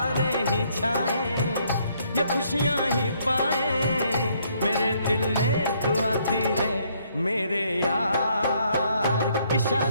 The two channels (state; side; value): inverted; both; correlation -0.69